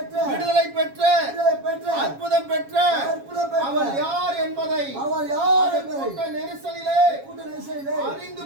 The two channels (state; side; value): late; left; 7.3 ms